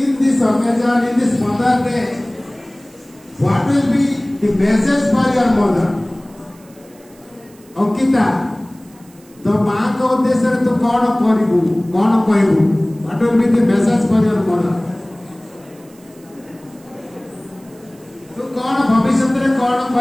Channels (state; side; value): noise; right; hiss, 28 dB below the sound